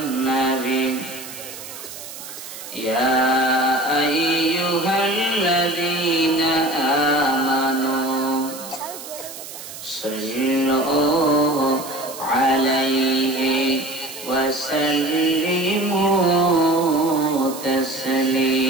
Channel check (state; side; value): noise; right; hiss, 13 dB below the sound